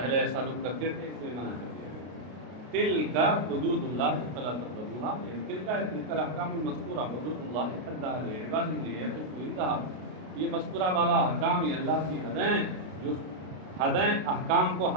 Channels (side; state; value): left; late; 33 ms